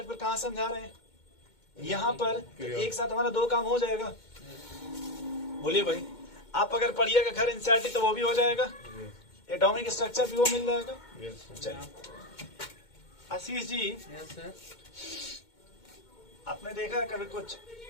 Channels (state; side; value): late; right; 2.2 ms